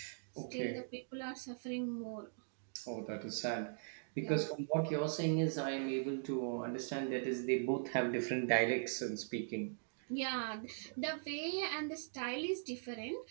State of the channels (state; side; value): silent; left; digital silence